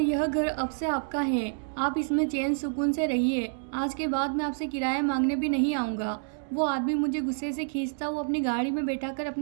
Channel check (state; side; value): silent; left; digital silence